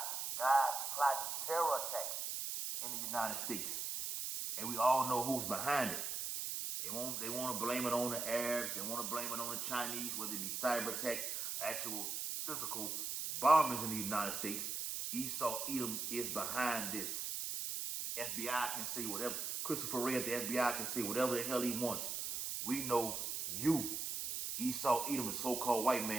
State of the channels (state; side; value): noise; right; hiss, 3 dB below the sound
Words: guys plotting terror attacks in the United States. And we all know who's behind it. They want to blame it on the Arabs. They want to blame it on the Chinese, whether it be cyber attacks, actual physical bombings in the United States. Esau Edom is behind this. The FBI can say whatever. Christopher Wray at the FBI can say whatever the hell he wants. We know you, Esau Edom, the so-called white